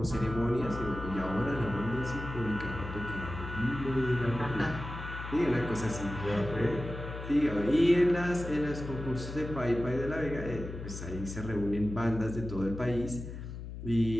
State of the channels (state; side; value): noise; left; hum, 9 dB below the sound